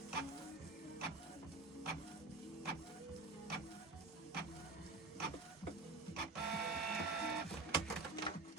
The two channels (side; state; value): left; quieter; 3.3 dB